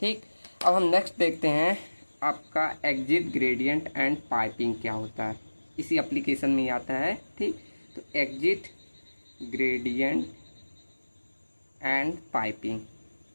ठीक, अब हम नेक्स्ट देखते हैं आपका एग्जिट ग्रेडियंट एंड पाइपिंग क्या होता है। इसी एप्लीकेशन में ही आता है। ठीक, तो एग्जिट ग्रेडियंट एंड पाइपिंग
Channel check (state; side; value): inverted; both; correlation -1.00